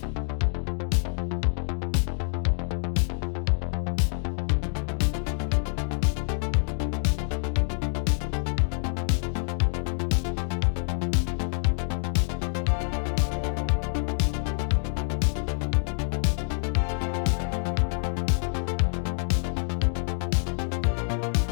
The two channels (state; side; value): silent; right; 60 dB below the other